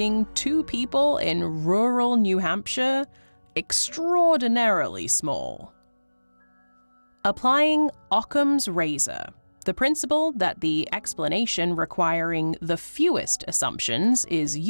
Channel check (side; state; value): both; inverted; correlation -1.00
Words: two people in rural New Hampshire extraordinarily small. Applying Occam's razor, the principle that the explanation requiring the fewest assumptions is